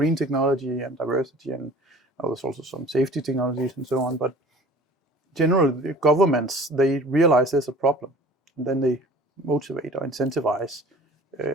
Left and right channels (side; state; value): both; normal; correlation 0.46